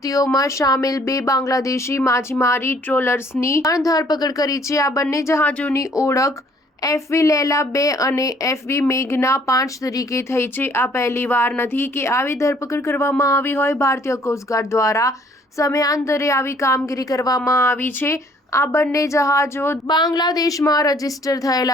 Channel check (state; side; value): normal; both; correlation 0.60